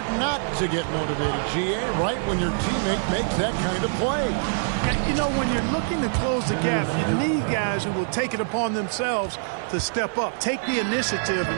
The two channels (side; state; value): left; silent; 57 dB below the other